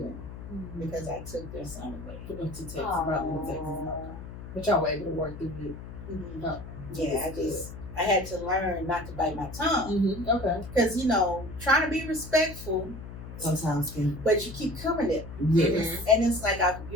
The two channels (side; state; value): left; noise; hum, 12 dB below the sound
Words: because I took their son away. Put them to Texas, brought them to Texas. But y'all were able to work through it. Yeah, I had to learn not to bite my tongue. Okay. Because, trying to be respectful, Sometimes but you keep coming at me. yes. And it's like,